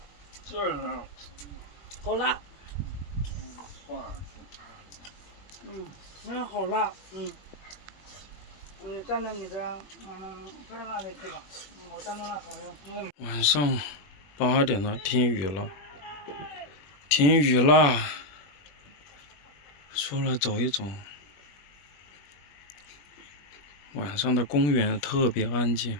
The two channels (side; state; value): right; late; 21 ms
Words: 这是。好辣。放上去。好辣。你站在你的在那里去吧。我站在那好像。晚上8点了，停雨了。停雨啦，出来走一走。晚上的公园特别安静，